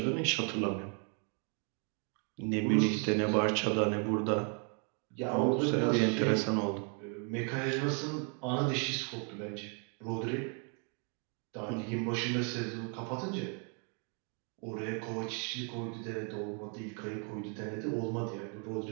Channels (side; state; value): left; quieter; 39.6 dB